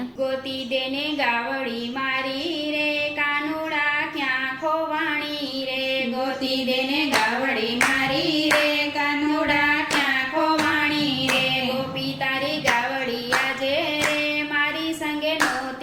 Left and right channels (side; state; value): both; identical; correlation 1.00